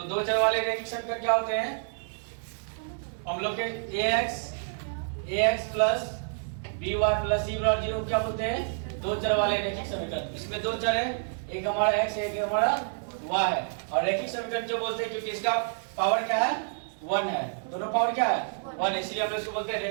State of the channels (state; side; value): silent; left; digital silence